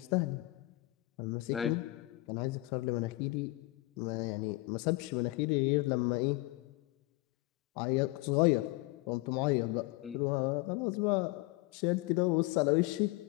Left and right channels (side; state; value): right; quieter; 20.9 dB